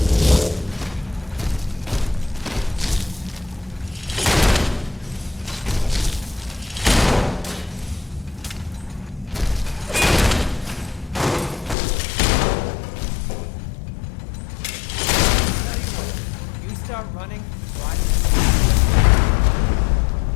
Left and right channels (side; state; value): right; drops out; at 11.8 s